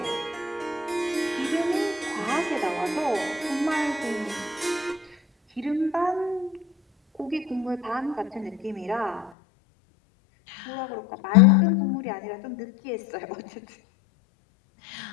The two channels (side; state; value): right; drops out; at 9.3 s